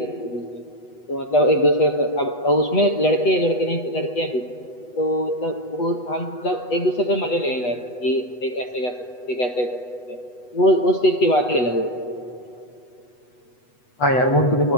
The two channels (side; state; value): right; late; 8.1 ms